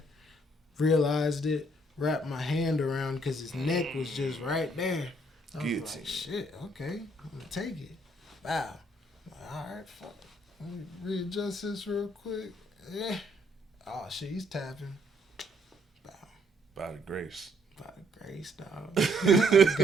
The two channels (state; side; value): normal; both; correlation 0.68